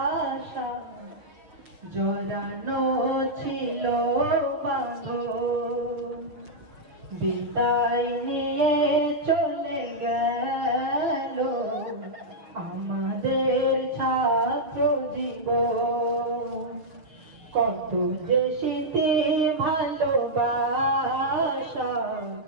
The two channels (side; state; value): left; late; 6.7 ms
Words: জড়ানো ছিল বাঁধন। বিদায় নিয়ে চলে গেল আমাদের ছাত্র জীবন, কত যে স্মৃতি ভালোবাসা